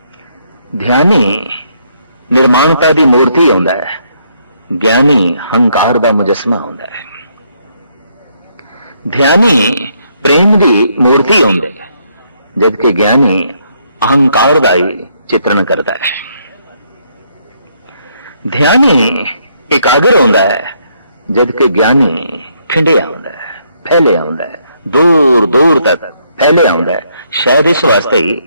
ध्यानी निर्माणता दी मूर्ति होंदा है, ज्ञानी हंकार दा मुजस्मा होंदा है। ध्यानी प्रेम दी मूर्ति होंदा है, जबकि ज्ञानी अहंकार दा ही चित्रण करता है। ध्यानी एकाग्र होंदा है, जबकि ज्ञानी ठिंडिया होंदा है, फैलिया होंदा है, दूर दूर तक फैलिया होंदा है। शायद इस वास्ते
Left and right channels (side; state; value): both; inverted; correlation -0.72